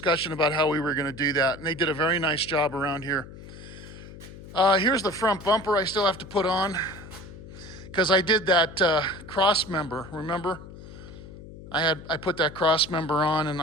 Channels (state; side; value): noise; left; hum, 15 dB below the sound